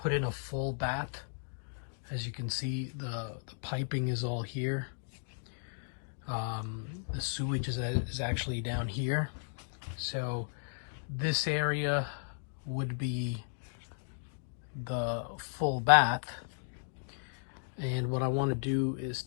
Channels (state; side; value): silent; right; digital silence